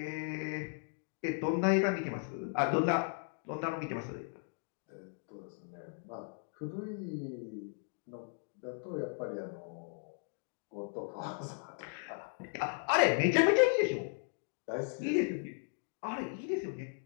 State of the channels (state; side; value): silent; right; 53 dB below the other